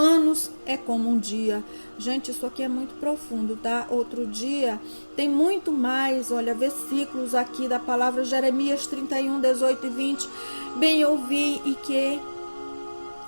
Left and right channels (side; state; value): both; inverted; correlation -1.00